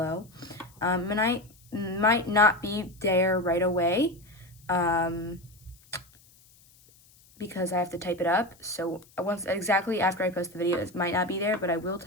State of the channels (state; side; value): noise; left; hiss, 28 dB below the sound